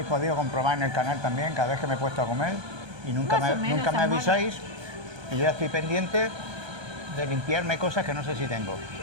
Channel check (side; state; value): left; late; 1.2 ms